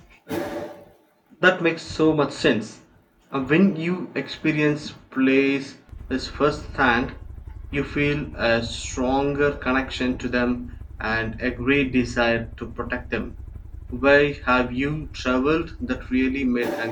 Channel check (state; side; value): identical; both; correlation 1.00